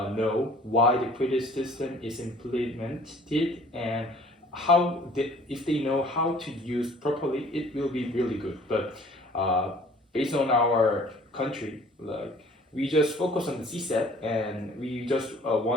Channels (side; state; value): both; normal; correlation 0.52